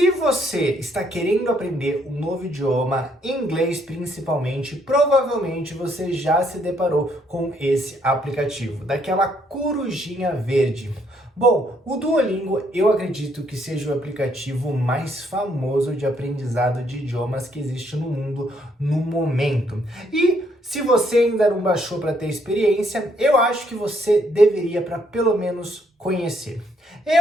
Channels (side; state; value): both; normal; correlation 0.70